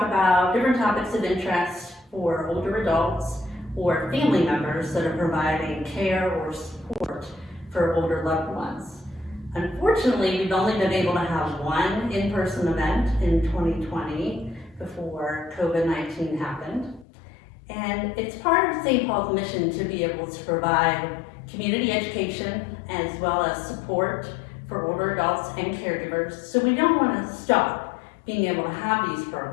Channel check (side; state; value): right; drops out; at 17.1 s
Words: about different topics of interest for older adults or family members that are providing care or support for older loved ones. Unfortunately, we've only been able to have one in-person event in 2020 before COVID-19 happened. And it's part of St. Paul's mission to be able to provide community education as well as support for older adults and caregivers. So we don't want to stop being able to have these